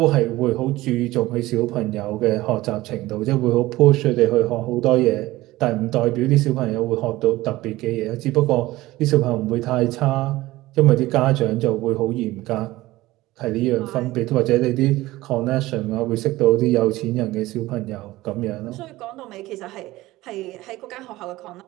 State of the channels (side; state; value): left; quieter; 17.9 dB